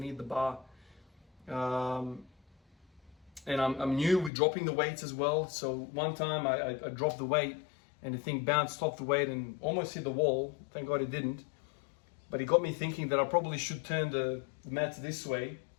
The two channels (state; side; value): drops out; right; at 4.3 s